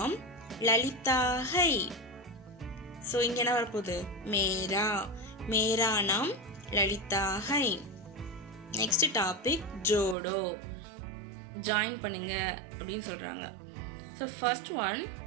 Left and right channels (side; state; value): left; drops out; at 10.2 s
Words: லலிதா ஹை. ஸோ இங்கே என்ன வரப்போகுது? மேரா. மேரா நாம் லலிதா ஹை. நெக்ஸ்ட் டாபிக் ஜோடோ. ஜாயின் பண்ணுங்க அப்படின்னு சொல்கிறாங்க. ஸோ ஃபர்ஸ்ட் ஒன்